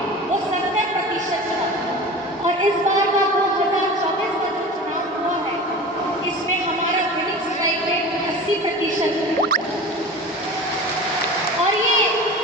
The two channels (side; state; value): both; normal; correlation 0.34